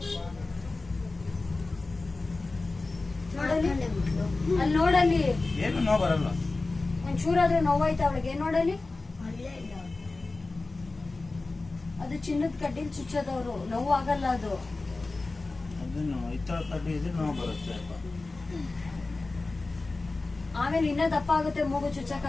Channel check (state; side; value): quieter; right; 3.4 dB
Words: ನೋಡಲಿ ಅಲ್ಲಿ ನೋಡಲಿ ಏನು ನೋವು ಬರಲ್ಲ. ಒಂಚೂರಾದ್ರೆ ನೋವಾಯ್ತು ಅವಳಿಗೆ ನೋಡಲಿ. ಅದು ಚಿನ್ನದ ಕಡ್ಡಿಲ್ ಚುಚ್ಚೋದವ್ರು ನೋವು ಆಗಲ್ಲ ಅದು. ಅದನ್ನು ಇತರ ಕಡ್ಡಿ ಇದ್ರೆ ನೋವು ಬರುತ್ತೆ. ಆಮೇಲೆ ಇನ್ನ ದಪ್ಪ ಆಗುತ್ತೆ, ಮೂಗು